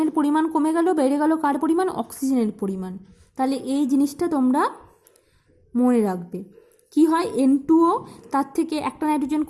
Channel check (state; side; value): identical; both; correlation 1.00